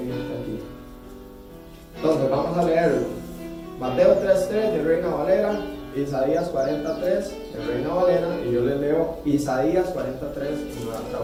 aquí. Entonces, vamos a leer Mateo 3:3 de Reina Valera, Isaías 43 de Reina Valera, y yo les leo Isaías 43 en nueva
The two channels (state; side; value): identical; both; correlation 1.00